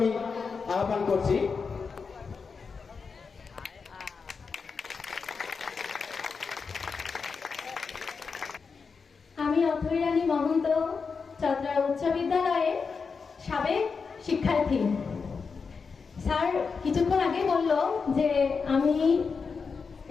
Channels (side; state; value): right; quieter; 5.2 dB